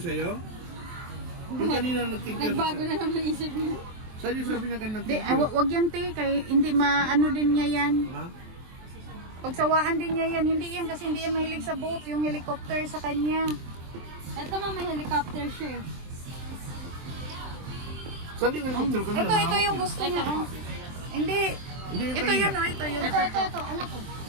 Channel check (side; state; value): left; late; 23 ms